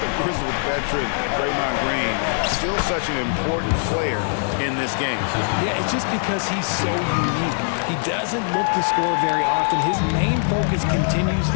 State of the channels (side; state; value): right; silent; digital silence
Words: the grizzled veteran, Draymond Green, still such an important player in this game. Yeah, it's just because he's so unique. He doesn't look to score very often. His main focus continues